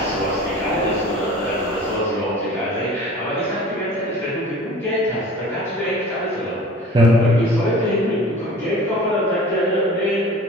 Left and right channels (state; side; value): normal; both; correlation 0.42